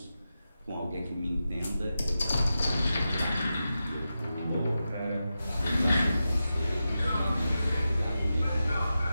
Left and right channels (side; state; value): both; inverted; correlation -0.91